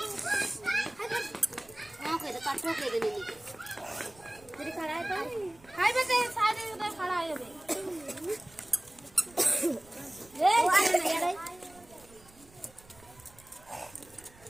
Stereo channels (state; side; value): noise; right; rumble, 25 dB below the sound